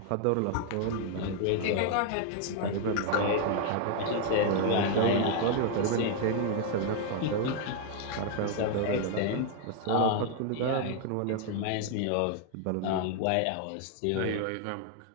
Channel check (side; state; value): both; different; correlation 0.00